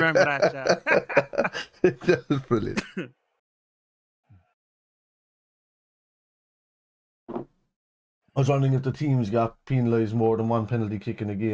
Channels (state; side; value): identical; both; correlation 1.00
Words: that. That was brilliant. I was wondering if the teams got penalised more than one penalty kick in a